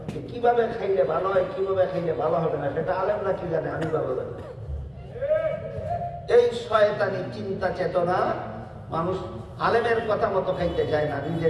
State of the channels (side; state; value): both; identical; correlation 1.00